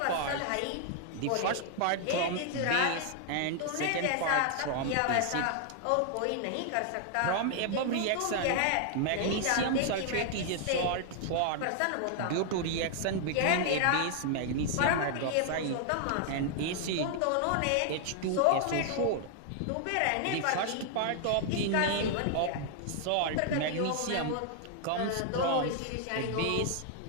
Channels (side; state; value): both; different; correlation 0.00